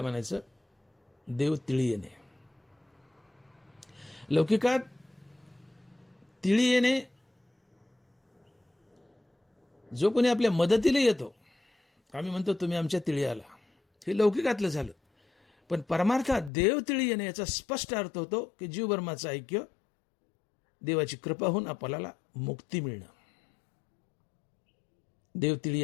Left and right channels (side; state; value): right; drops out; at 16.5 s